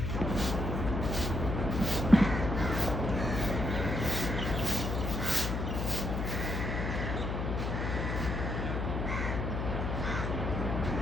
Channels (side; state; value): left; noise; hum, 2 dB below the sound